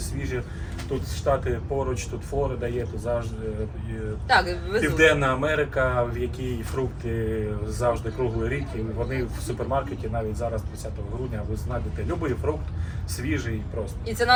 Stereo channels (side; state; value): both; identical; correlation 1.00